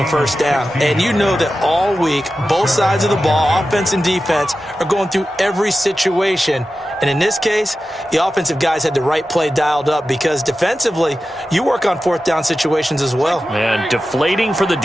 first down. And you know that all week, both sides of the ball, offense and defense, are going through every situation. And in this case, the offensive guys had the right play dialed up because defensively, you work on fourth down situations as well. And deflating for the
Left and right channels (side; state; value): both; normal; correlation 0.93